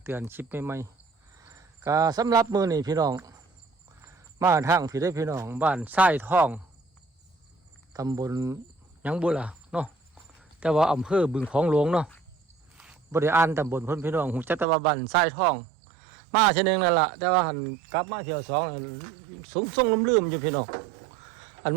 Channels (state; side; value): drops out; left; at 14.7 s